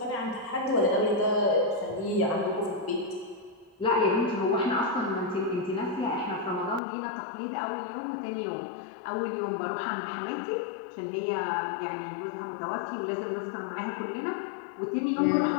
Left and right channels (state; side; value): drops out; right; at 6.8 s